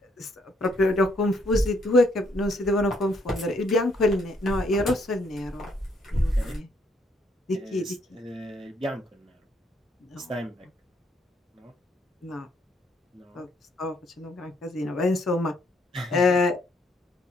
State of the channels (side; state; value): both; normal; correlation 0.71